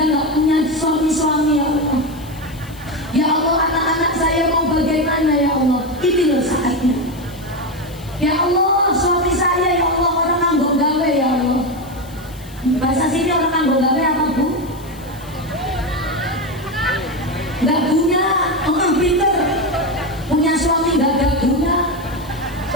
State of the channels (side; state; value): left; noise; hiss, 22 dB below the sound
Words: gak punya suami-suami, ya Allah. Ya Allah, anak-anak saya mau bagaimana, ya Allah. Ini loh saatnya. Ya Allah, suami saya, ya Allah, orang nganggo gawe, ya Allah. Bahasa sini orang nganggo gawe apa Bu? Gak guna, orang pinter. Punya suami gak guna.